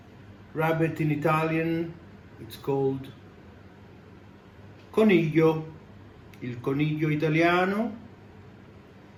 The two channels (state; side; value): identical; both; correlation 1.00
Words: Rabbit in Italian, it's called coniglio, il coniglio italiano.